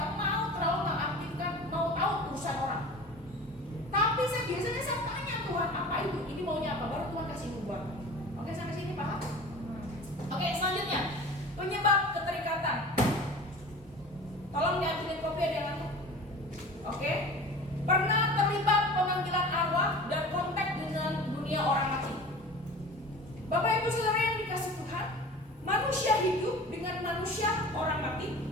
mau terlalu mengaktifkan, mau tahu urusan orang. Tapi saya biasanya tanya Tuhan apa itu, ini maunya apa, baru Tuhan kasih nubuatan. Oke, sampai sini paham? Oke, selanjutnya penyebab keterikatan. Tolong diambilin kopi, ada yang ngantuk. Oke, pernah terlibat pemanggilan arwah dan kontak dengan dunia orang mati. Bapak Ibu Saudara yang dikasih Tuhan, manusia hidup dengan manusia orang mati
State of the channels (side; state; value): both; normal; correlation 0.38